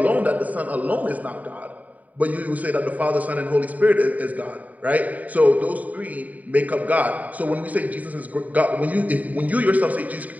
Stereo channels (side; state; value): left; late; 0.073 ms